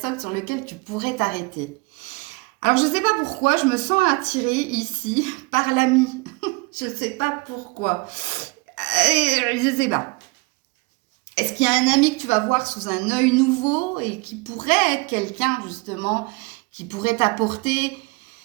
sur lequel tu pourrais t'arrêter. Alors, je ne sais pas pourquoi, je me sens attirée ici par l'ami. Je ne sais pas pourquoi. Je ne sais pas. Est-ce qu'il y a un ami que tu vas voir sous un œil nouveau et qui pourrait être quelqu'un, justement, qui pourrait t'apporter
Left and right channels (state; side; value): quieter; left; 26.8 dB